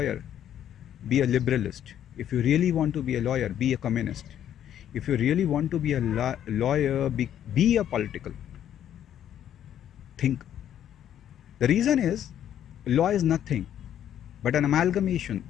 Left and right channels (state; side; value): quieter; right; 10.4 dB